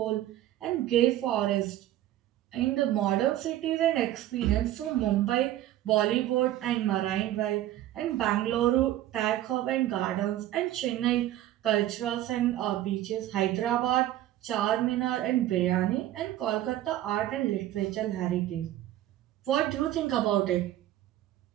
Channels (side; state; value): left; quieter; 13.7 dB